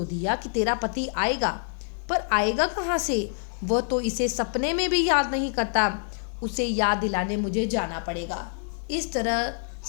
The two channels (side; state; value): right; silent; digital silence